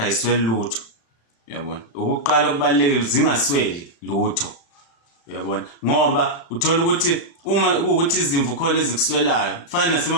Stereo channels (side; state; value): right; late; 36 ms